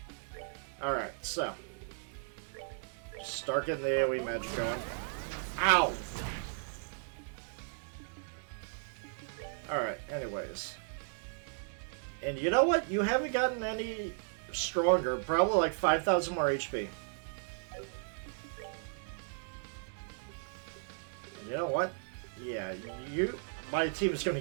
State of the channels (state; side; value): silent; left; digital silence